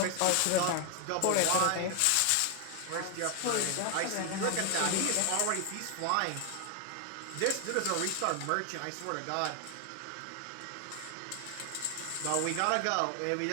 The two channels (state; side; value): different; both; correlation 0.00